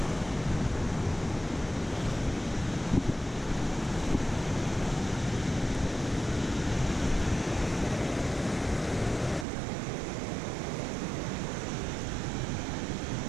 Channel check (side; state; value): left; drops out; at 9.5 s